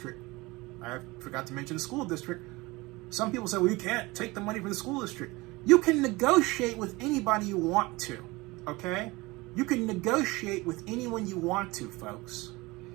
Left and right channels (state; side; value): quieter; left; 22.4 dB